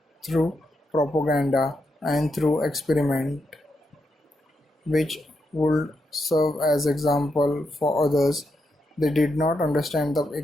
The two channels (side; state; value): both; normal; correlation 0.83